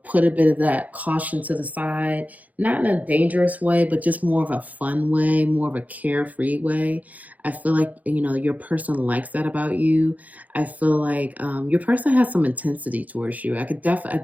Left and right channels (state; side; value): late; left; 0.077 ms